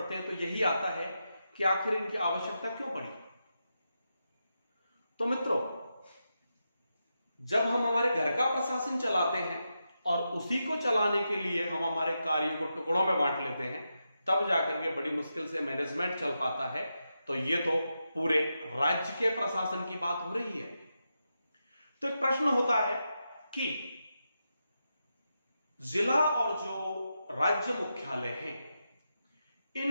हैं तो यही आता है कि आखिर इनकी आवश्यकता क्यों पड़ी। तो मित्रों, जब हम हमारे घर का प्रशासन चलाते हैं और उसी को चलाने के लिए हम हमारे कार्यों को टुकड़ों में बांट लेते हैं, तब जाकर के बड़ी मुश्किल से मैनेजमेंट चल पाता है। तो ये तो पूरे राज्य के प्रशासन की बात हो रही है। तो एक प्रश्न होता है कि जिला और जो राज्य मुख्यालय हैं,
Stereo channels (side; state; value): both; inverted; correlation -0.87